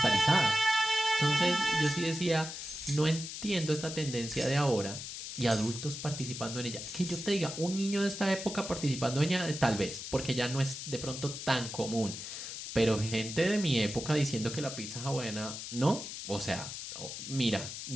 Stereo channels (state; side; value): noise; left; hiss, 8 dB below the sound